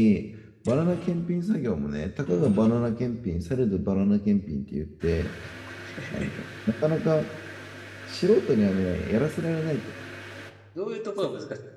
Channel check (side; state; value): both; identical; correlation 1.00